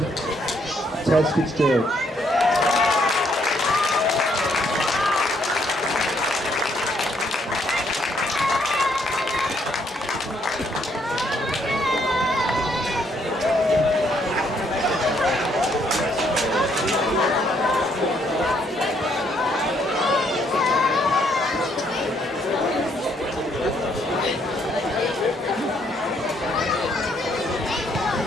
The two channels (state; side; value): normal; both; correlation 0.70